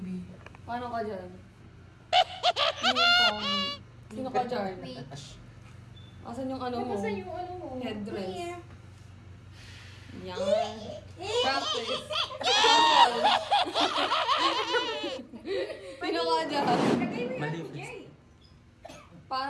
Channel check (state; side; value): identical; both; correlation 1.00